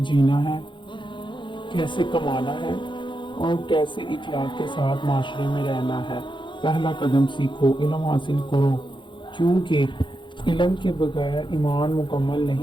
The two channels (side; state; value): right; late; 0.23 ms